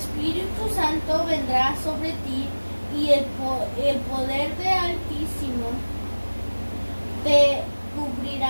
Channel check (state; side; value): inverted; both; correlation -1.00